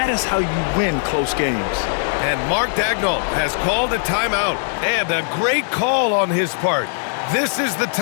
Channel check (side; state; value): right; silent; digital silence